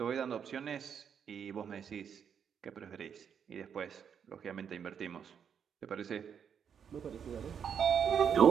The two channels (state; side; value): quieter; left; 7.6 dB